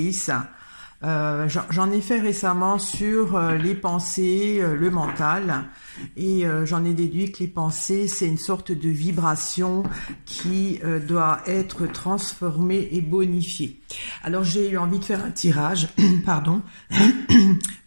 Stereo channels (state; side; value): inverted; both; correlation -1.00